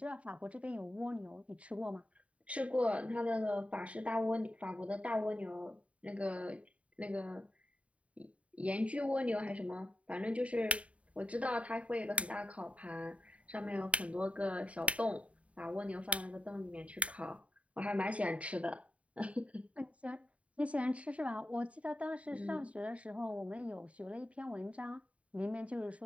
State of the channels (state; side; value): late; left; 0.065 ms